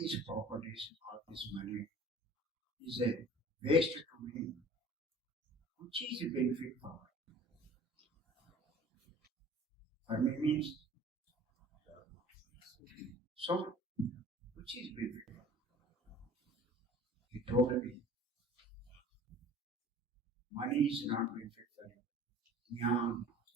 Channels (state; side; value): normal; both; correlation 0.47